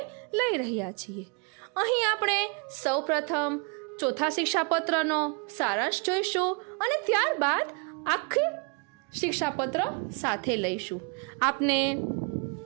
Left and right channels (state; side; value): quieter; left; 34.5 dB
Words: લઈ રહ્યા છીએ. અહીં આપણે સૌપ્રથમ ચોથા શિક્ષાપત્રનો સારાંશ જોઈશું અને ત્યારબાદ આખી શિક્ષાપત્ર સાથે લઈશું. આપને